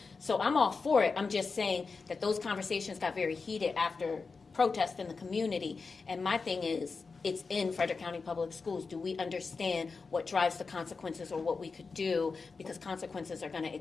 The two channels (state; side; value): quieter; right; 4.6 dB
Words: So I'm all for it. I'm just saying that those conversations got very heated after protest in the community, and my thing is, it's in Frederick County Public Schools. Do we understand what drives the consequences or what we could do? Because consequences are going to